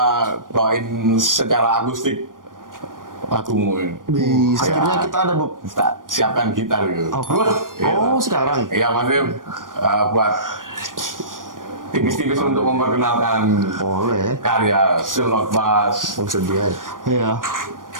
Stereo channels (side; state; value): left; late; 0.90 ms